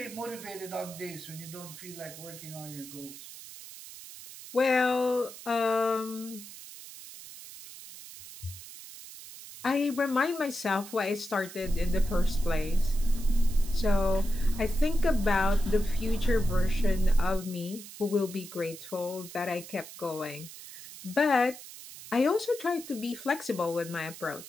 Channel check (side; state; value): right; noise; hiss, 14 dB below the sound